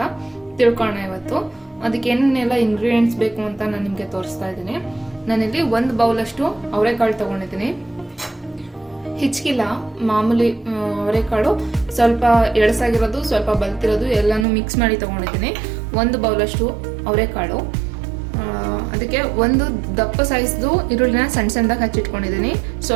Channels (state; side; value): drops out; left; at 14.5 s